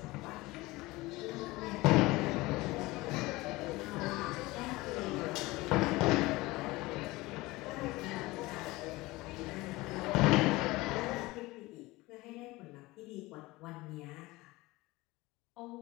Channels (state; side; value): quieter; right; 20.7 dB